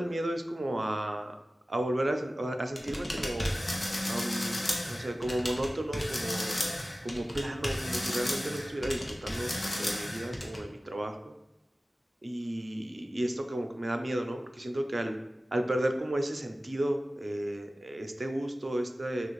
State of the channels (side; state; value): both; normal; correlation 0.96